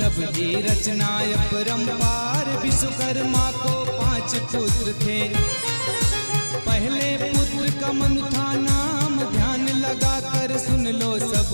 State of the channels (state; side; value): inverted; both; correlation -1.00